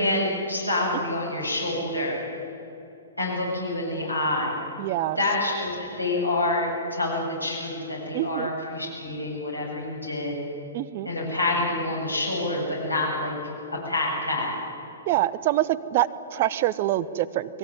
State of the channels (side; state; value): both; inverted; correlation -0.33